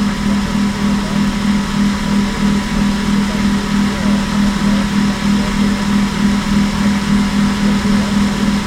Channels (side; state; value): both; identical; correlation 1.00